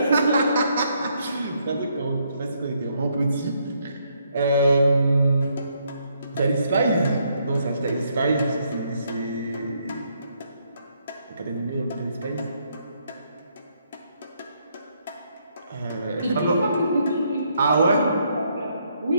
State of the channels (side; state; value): both; inverted; correlation -0.73